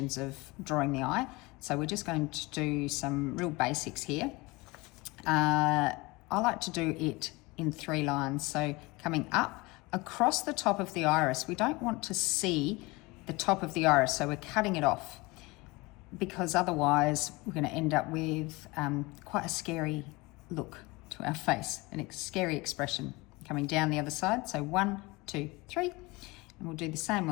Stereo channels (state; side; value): quieter; right; 23.7 dB